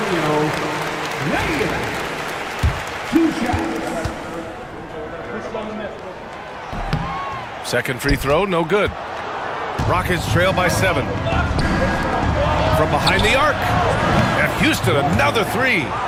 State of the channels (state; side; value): identical; both; correlation 1.00